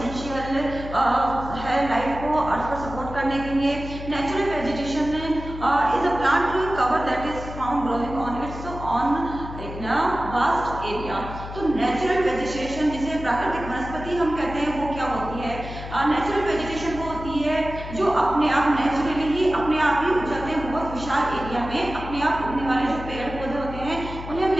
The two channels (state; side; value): noise; left; hum, 10 dB below the sound